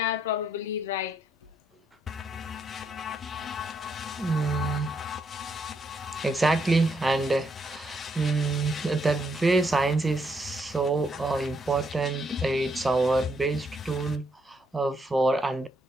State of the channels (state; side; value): normal; both; correlation 0.75